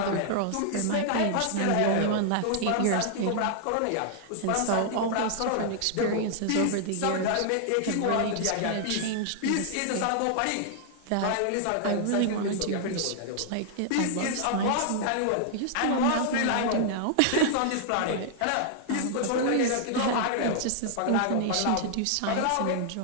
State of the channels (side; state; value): both; different; correlation 0.00